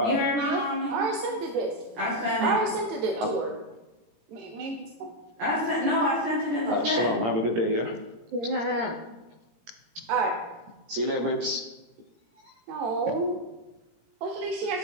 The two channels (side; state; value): left; late; 17 ms